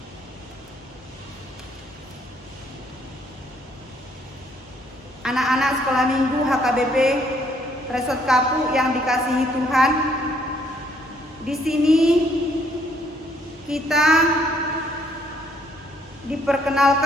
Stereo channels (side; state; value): both; normal; correlation 0.66